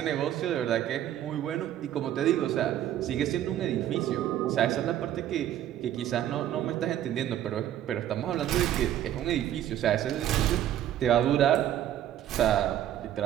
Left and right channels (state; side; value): quieter; left; 11.6 dB